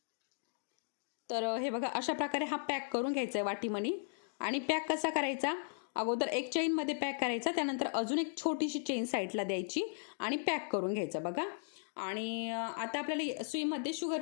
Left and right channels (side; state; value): right; silent; digital silence